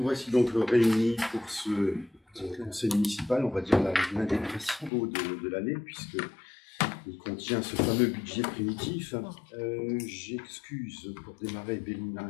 voici donc réunis pour ce conseil municipal, on va dire l'un des principaux de l'année, puisqu'il contient ce fameux budget primitif. J'excuse pour démarrer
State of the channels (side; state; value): right; drops out; at 4.9 s